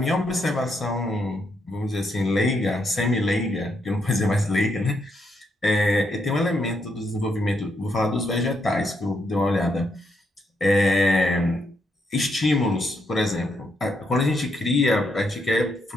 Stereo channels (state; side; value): normal; both; correlation 0.78